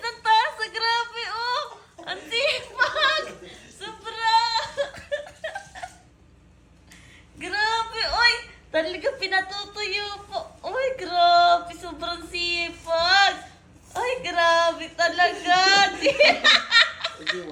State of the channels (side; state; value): both; identical; correlation 1.00